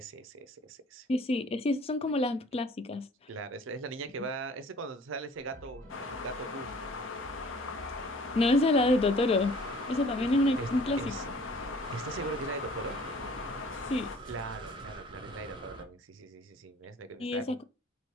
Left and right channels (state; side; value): normal; both; correlation 0.51